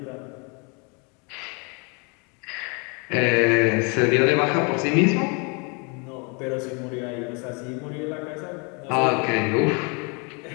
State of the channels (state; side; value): quieter; right; 32.9 dB